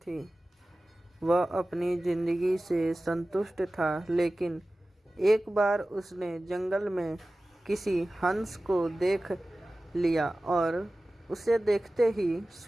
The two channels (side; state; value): both; normal; correlation 0.96